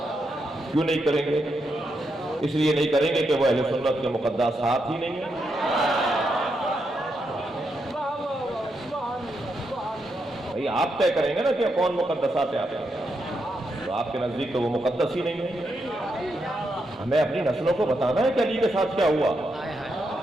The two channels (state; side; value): normal; both; correlation 0.82